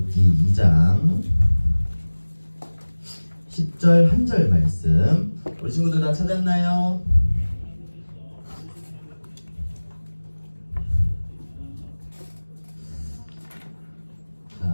2장 10절 한 절 말씀. 우리 친구들 다 찾았나요?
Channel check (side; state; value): both; inverted; correlation -1.00